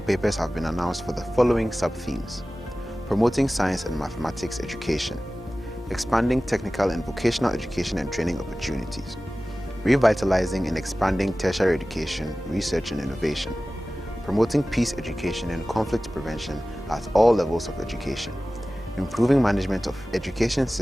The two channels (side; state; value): both; normal; correlation 0.96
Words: papers have been announced for the following sub-themes: promoting science and mathematics education, expanding technical and vocational education and training opportunities, revitalizing and expanding tertiary education, research and innovation, promoting peace education and conflict prevention at all levels of education, improving management of education